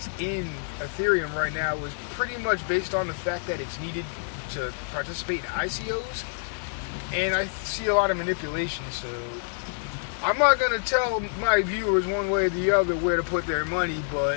in Ethereum right now is pretty much based on the fact that it's needed to participate in ICOs, and I see a lot of manipulation. So I'm not gonna tell my viewers one way or the other where to put their money,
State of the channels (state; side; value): silent; right; digital silence